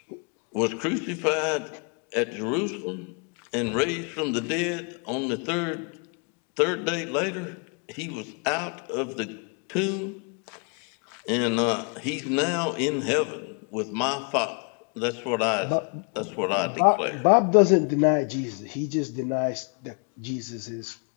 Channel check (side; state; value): right; quieter; 36.3 dB